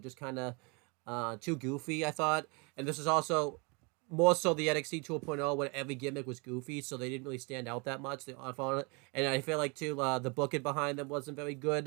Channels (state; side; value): quieter; left; 31.2 dB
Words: kind of too goofy, I thought. And this is also more so the NXT 2.0 where every gimmick was goofy, so they didn't really stand out that much. And I feel like too the booking behind them wasn't very